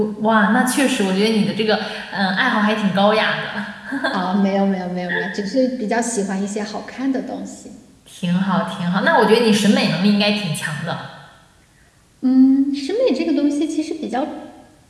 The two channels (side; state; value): both; identical; correlation 1.00